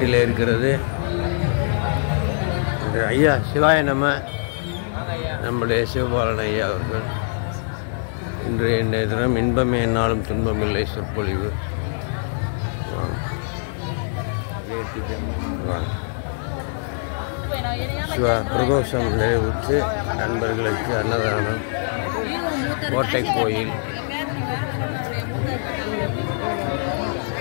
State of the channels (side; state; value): right; silent; digital silence